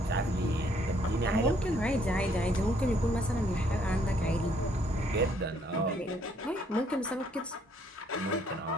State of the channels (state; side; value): normal; both; correlation 0.67